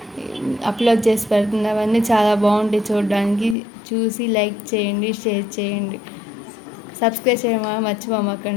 అప్లోడ్ చేసి పెడుతుంది. అవన్నీ చాలా బాగుంటాయి చూడడానికి. చూసి లైక్ చేయండి, షేర్ చేయండి, సబ్స్క్రైబ్ చేయడం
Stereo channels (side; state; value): right; drops out; at 3.6 s